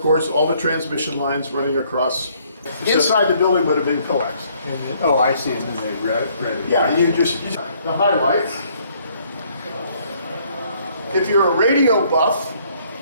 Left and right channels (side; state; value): both; inverted; correlation -0.65